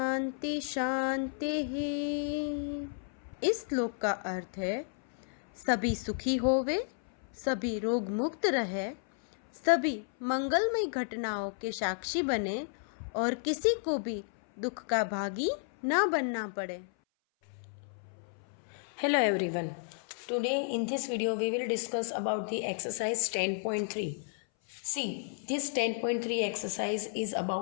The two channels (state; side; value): silent; right; 56 dB below the other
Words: शांति। इस श्लोक का अर्थ है सभी सुखी होवे, सभी रोग मुक्त रहे, सभी मंगलमय घटनाओं के साक्षी बने और किसी को भी दुख का भागी ना बनना पड़े। Hello everyone. Today in this video we will discuss about the exercise 10.3. See, this 10.3 exercise is